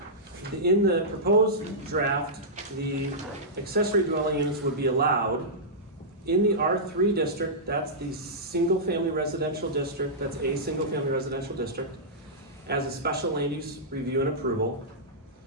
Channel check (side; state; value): both; normal; correlation -0.13